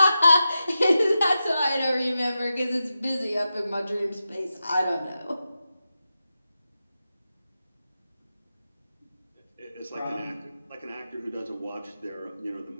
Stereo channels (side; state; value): both; inverted; correlation -0.90